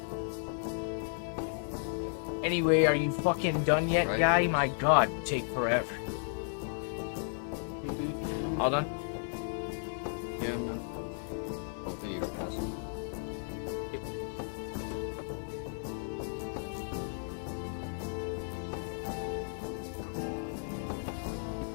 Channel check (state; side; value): silent; right; 55 dB below the other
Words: Anyway, are you fucking done yet, Right. guy? My god, you take forever. All done? Yeah, I'm done. Hopefully you don't pass him.